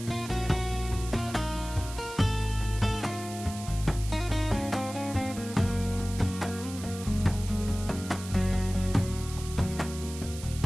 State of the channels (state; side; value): noise; right; hiss, 13 dB below the sound